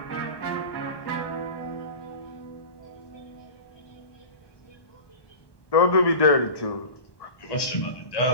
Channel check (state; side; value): late; right; 1.1 ms